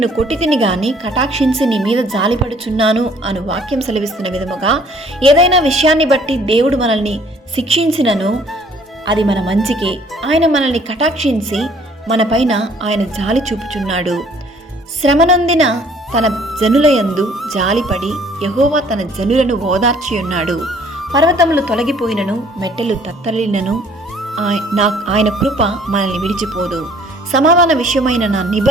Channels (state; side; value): normal; both; correlation 0.58